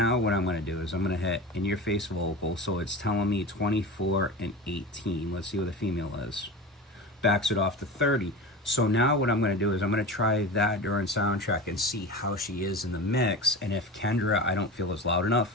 what I'm gonna do is I'm gonna hit in your face vocal. So it's telling me 24 and 18. Let's see what the female is. Backs it off to 30. So now what I'm gonna do is I'm gonna try that during sound check and see how she is in the mix. And if Kendra, I don't feel is loud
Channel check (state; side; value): normal; both; correlation 0.30